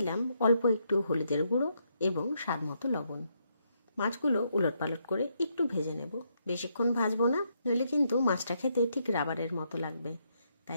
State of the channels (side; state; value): both; inverted; correlation -0.77